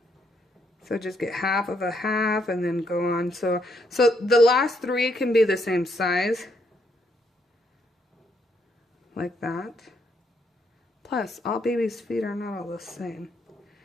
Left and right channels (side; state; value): both; normal; correlation 0.74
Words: So just get half of a half and then go on. So the last 3 can be the same size. Like that. Plus, all babies' feet are not all the same.